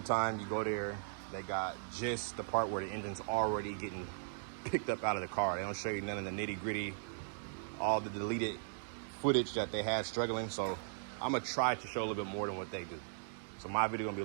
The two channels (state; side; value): silent; left; digital silence